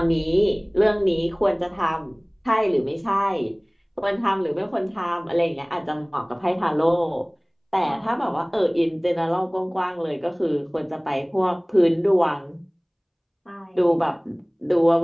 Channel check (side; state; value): both; identical; correlation 1.00